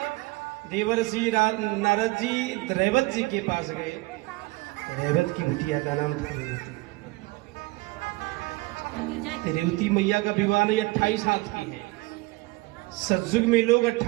देवर्षि नारद जी रेवत जी के पास गए। रेवत की बिटिया का नाम था रेवती। रेवती मैया का विवाह नहीं 28 हाथ की है। सतयुग में लोग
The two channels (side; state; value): left; quieter; 22.4 dB